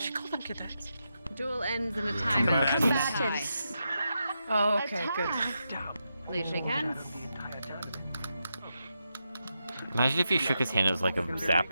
called them cadets. Duel ends in a timeout. Combatants. Oh, okay, good. Please shake hands. Imagine if he shook his hand, it was like a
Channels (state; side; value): inverted; both; correlation -0.86